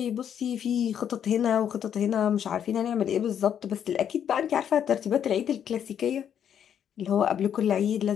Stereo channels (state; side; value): quieter; right; 9.0 dB